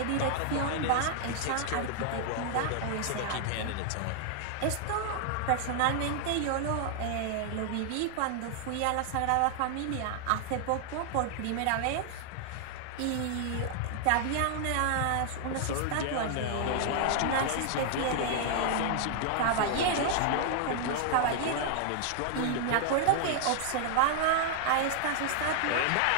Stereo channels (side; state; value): both; different; correlation 0.00